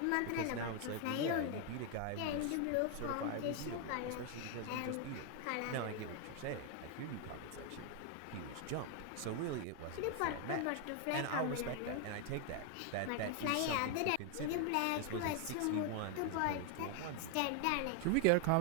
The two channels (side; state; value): both; different; correlation 0.00